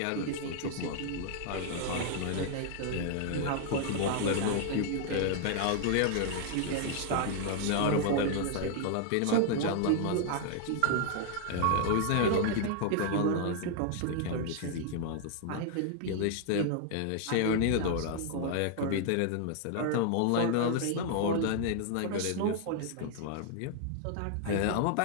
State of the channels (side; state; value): both; different; correlation 0.00